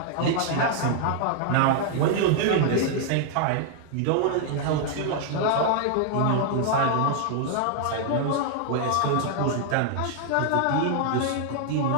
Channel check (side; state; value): both; different; correlation 0.00